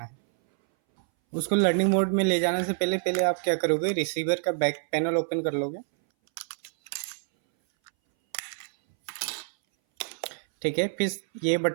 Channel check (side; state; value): left; silent; 59 dB below the other